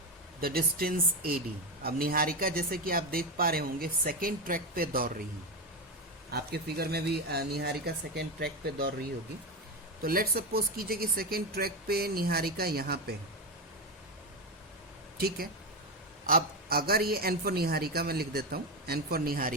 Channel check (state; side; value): normal; both; correlation 0.13